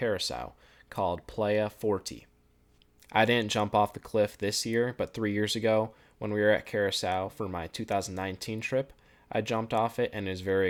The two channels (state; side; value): identical; both; correlation 1.00